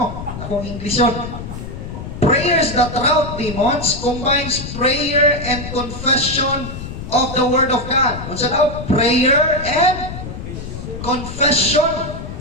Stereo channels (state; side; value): noise; left; rumble, 9 dB below the sound